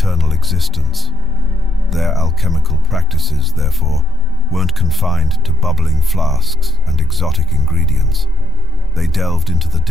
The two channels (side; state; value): both; normal; correlation 0.16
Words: existence. Their alchemical practices, therefore, weren't confined to bubbling flasks and exotic ingredients. They delved into the